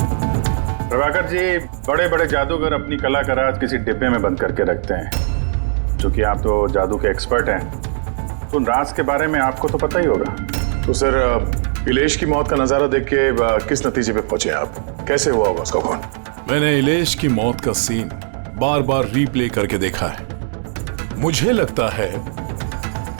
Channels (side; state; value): left; silent; digital silence